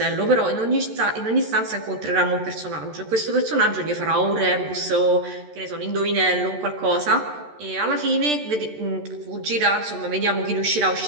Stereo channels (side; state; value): left; late; 13 ms